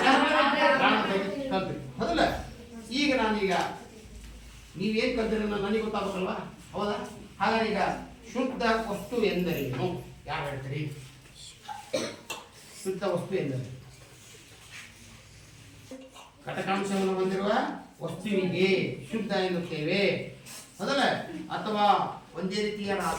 ಕಲ್ತ್ರಿ, ಹೌದಲ್ಲ? ಈಗ ನೀವೇನ್ ಕಲ್ತಿರ ನನಗೆ ಗೊತ್ತಾಗಬೇಕಲ್ವಾ? ಹೌದಾ? ಹಾಗಾದ್ರೆ ಈಗ ಶುದ್ಧ ವಸ್ತು ಎಂದರೇನು? ಯಾರು ಹೇಳ್ತೀರಿ? ಶುದ್ಧ ವಸ್ತು ಎಂದರೆ ಘಟಕಾಂಶವನ್ನು ಹೊಂದಿರುವ ವಸ್ತುವಿಗೆ ಶುದ್ಧ ಎನ್ನುತ್ತೇವೆ, ಹೌದಲ್ಲ? ಅಥವಾ ಒಂದೇ ರೀತಿಯ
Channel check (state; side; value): identical; both; correlation 1.00